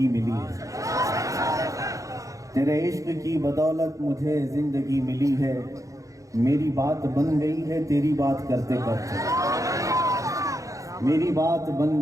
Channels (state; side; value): late; left; 0.16 ms